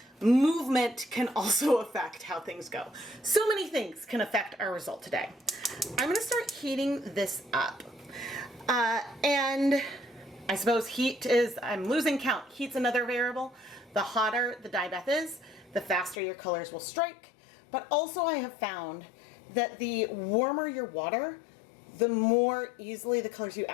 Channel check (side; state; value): right; drops out; at 16.2 s